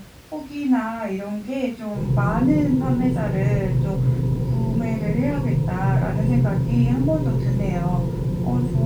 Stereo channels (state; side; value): identical; both; correlation 1.00